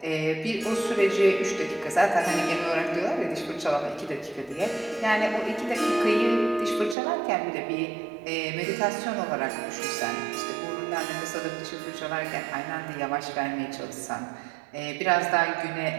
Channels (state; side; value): drops out; left; at 7.0 s